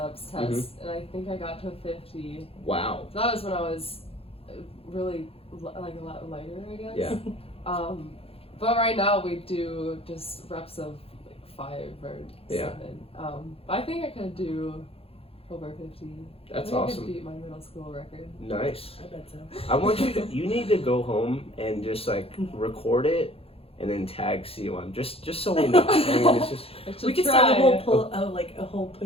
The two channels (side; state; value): right; late; 0.28 ms